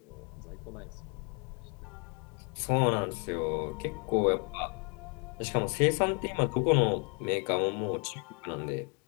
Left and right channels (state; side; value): quieter; right; 35.6 dB